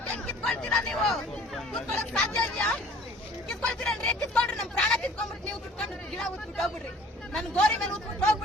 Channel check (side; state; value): both; normal; correlation 0.51